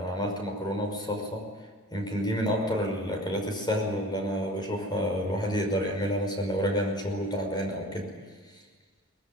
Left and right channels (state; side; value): normal; both; correlation 0.41